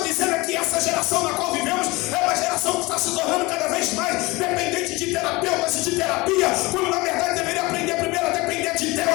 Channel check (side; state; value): right; quieter; 23.0 dB